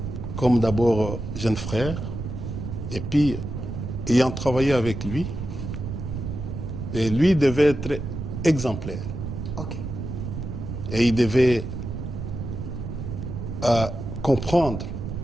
comme d'abord jeune frère, et puis ayant travaillé avec lui, et lui devait être exemplaire. Ok. Et il devait comprendre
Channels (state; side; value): noise; right; rumble, 6 dB below the sound